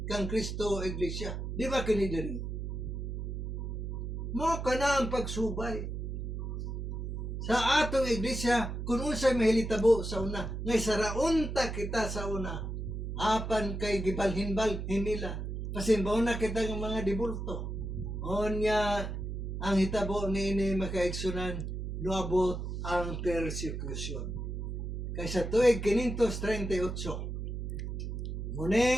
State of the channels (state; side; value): noise; right; hum, 4 dB below the sound